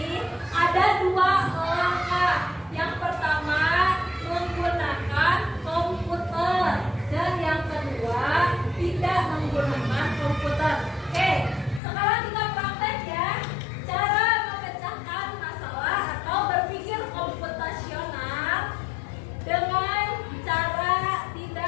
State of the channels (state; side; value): drops out; right; at 11.8 s